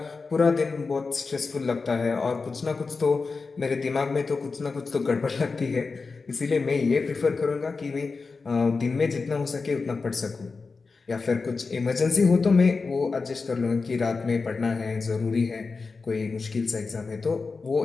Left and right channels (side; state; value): right; quieter; 4.4 dB